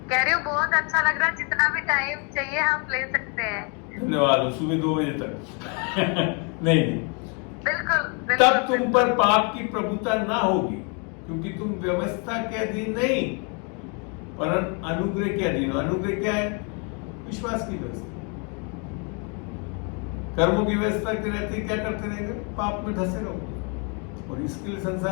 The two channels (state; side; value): quieter; right; 35.9 dB